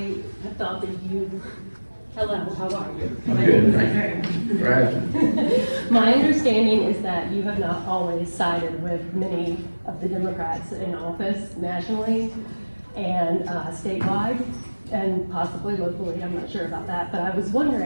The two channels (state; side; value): inverted; both; correlation -1.00